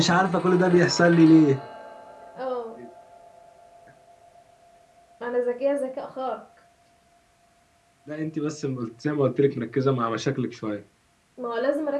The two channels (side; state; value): both; identical; correlation 1.00